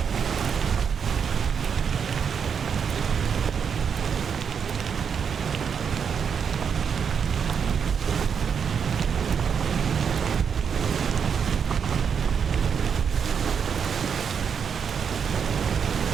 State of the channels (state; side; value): quieter; left; 6.9 dB